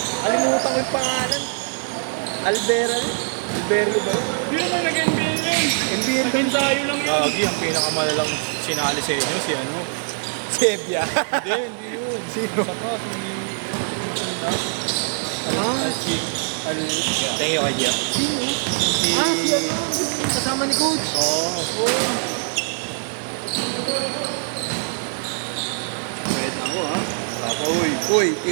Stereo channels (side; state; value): left; silent; 64 dB below the other